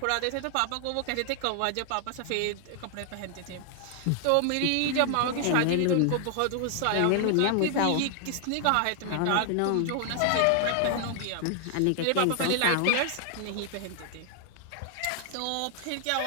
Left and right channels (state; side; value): different; both; correlation 0.00